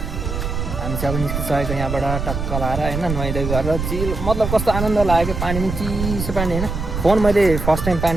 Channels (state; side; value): noise; right; rumble, 4 dB below the sound